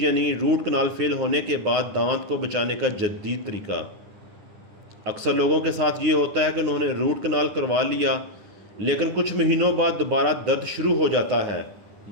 यानी रूट कनाल फेल होने के बाद दांत को बचाने का जदीद तरीका। अक्सर लोगों के साथ ये होता है कि उन्होंने रूट कनाल करवा लिया, लेकिन कुछ महीनों बाद दोबारा दर्द शुरू हो जाता है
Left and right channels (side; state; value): left; late; 10 ms